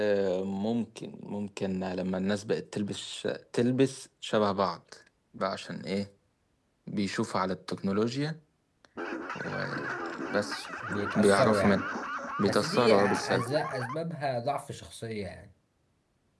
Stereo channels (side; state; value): both; identical; correlation 1.00